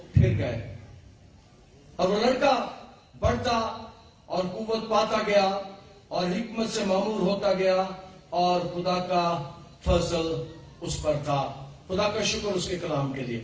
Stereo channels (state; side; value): identical; both; correlation 1.00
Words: پھر گئے، اور وہ لڑکا بڑھتا اور قوت پاتا گیا اور حکمت سے معمور ہوتا گیا، اور خدا کا فضل اس پر تھا۔ خدا کا شکر اس کے کلام کے لیے،